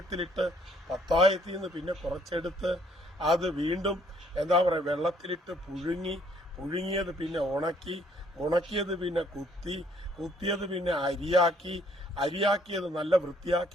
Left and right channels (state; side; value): normal; both; correlation 0.64